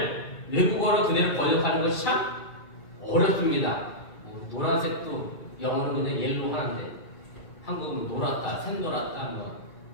외국어로 그대로 번역하는 것이 참 어렵습니다. 노란색도 영어는 그냥 옐로우 하는데 한국은 노랗다, 샛노랗다,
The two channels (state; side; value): late; right; 2.4 ms